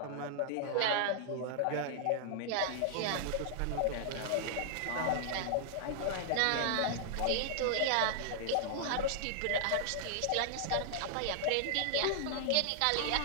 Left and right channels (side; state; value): both; different; correlation -0.01